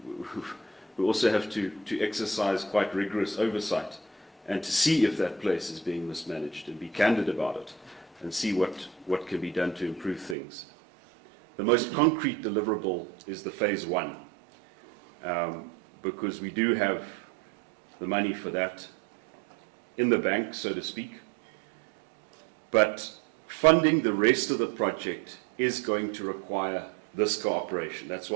we also have to exercise quite rigorous oversight and to see if that place is being mismanaged and be candid about it and see what can be done to improve things. The most concrete deliverable is the phase 1, because we do have the money for that in the bank, so to speak. But funding the rest of the project is going to require this cooperation. That's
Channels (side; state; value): left; drops out; at 10.4 s